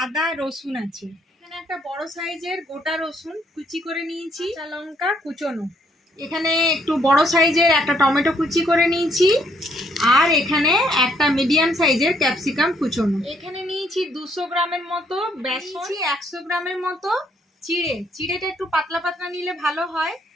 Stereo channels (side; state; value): both; normal; correlation 0.70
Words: আদা, রসুন আছে। এখানে একটা বড় সাইজের গোটা রসুন কুচি করে নিয়েছি, কাঁচা লঙ্কা কুচোনো। এখানে একটু বড় সাইজের একটা টমেটো কুচি করে নিয়েছি, আর এখানে একটা মিডিয়াম সাইজের ক্যাপসিকাম কুচোনো। এখানে নিয়েছি 200 গ্রামের মতো বেসন, 100 গ্রামের মতো চিড়েটা একটু পাতলা পাতলা নিলে ভালো হয়।